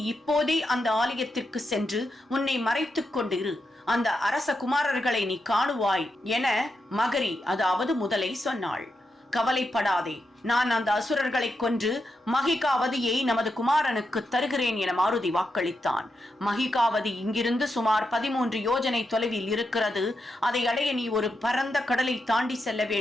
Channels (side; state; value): both; normal; correlation 0.85